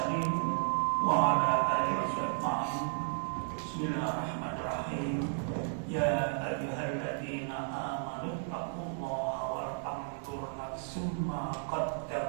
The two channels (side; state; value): left; silent; digital silence